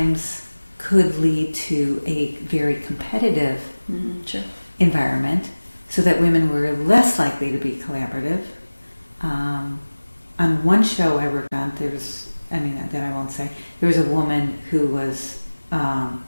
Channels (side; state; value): both; inverted; correlation -1.00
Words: could lead to a very competitive environment, so that women were less likely to be collaborative. On one show I worked on, that I won't say, there was a woman who was